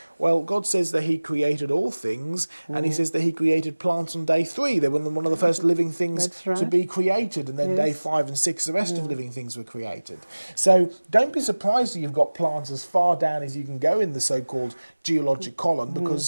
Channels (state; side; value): inverted; both; correlation -1.00